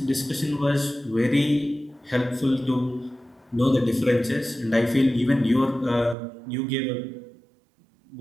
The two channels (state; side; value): drops out; left; at 6.2 s